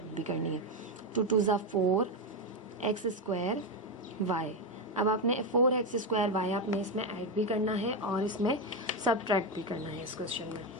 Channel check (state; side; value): normal; both; correlation 0.09